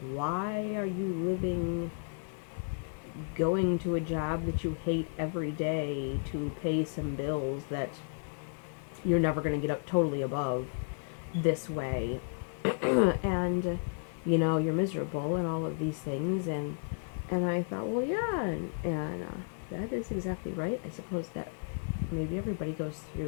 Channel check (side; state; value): right; silent; digital silence